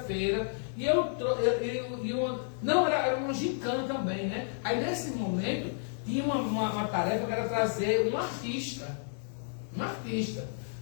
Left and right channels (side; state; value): right; silent; digital silence